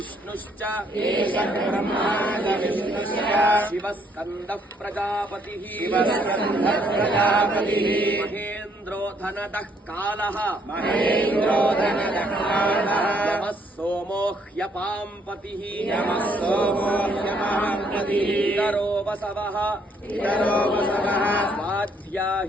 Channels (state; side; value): normal; both; correlation 0.68